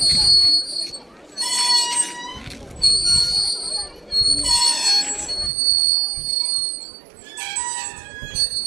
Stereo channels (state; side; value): drops out; left; at 5.5 s